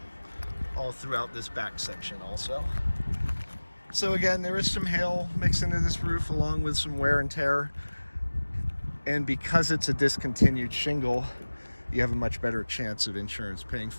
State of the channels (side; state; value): both; inverted; correlation -1.00